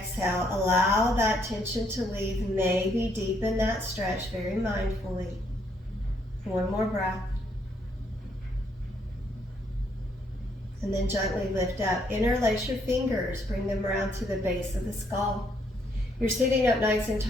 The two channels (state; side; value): normal; both; correlation 0.71